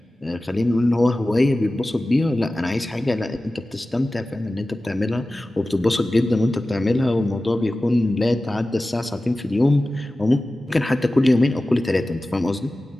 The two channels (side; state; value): both; normal; correlation 0.96